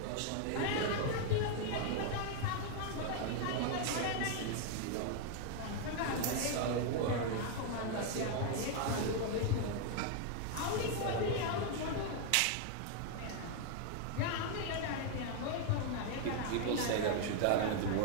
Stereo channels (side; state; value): both; different; correlation 0.00